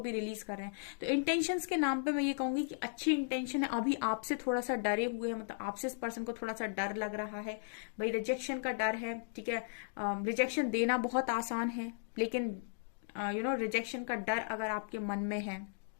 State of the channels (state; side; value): silent; right; digital silence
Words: भी रिलीज कर रहे हैं। तो इंटेंशंस के नाम पे मैं ये कहूंगी कि अच्छी इंटेंशन है, अभी आपसे थोड़ा सा डरे हुए हैं, मतलब आपसे इस पर्सन को थोड़ा सा डर लग रहा है भाई, रिजेक्शन का डर है, ठीक है। रिजेक्शन देना बहुत आसान है, लेकिन रिजेक्शन का डर अगर आपके मन में है,